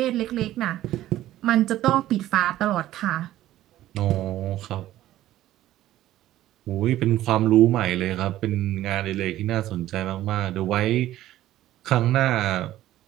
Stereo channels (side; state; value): left; quieter; 14.0 dB